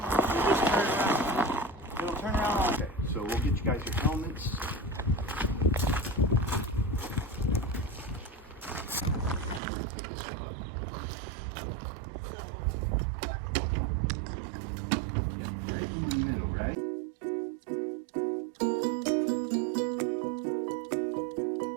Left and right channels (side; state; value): left; drops out; at 9.6 s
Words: you just turn around. It'll turn around all day. So we'll get you guys your helmets.